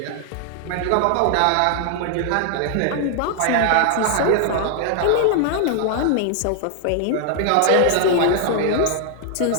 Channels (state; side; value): different; both; correlation 0.00